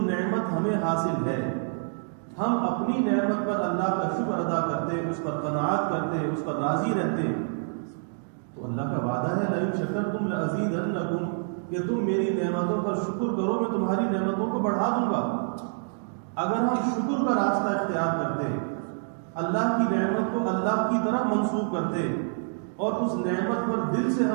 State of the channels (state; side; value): silent; left; digital silence